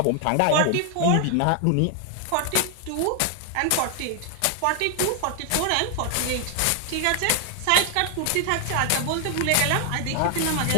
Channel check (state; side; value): different; both; correlation 0.00